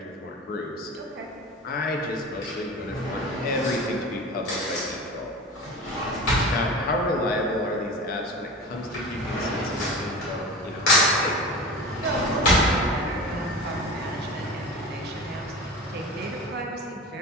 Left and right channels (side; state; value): both; normal; correlation 0.32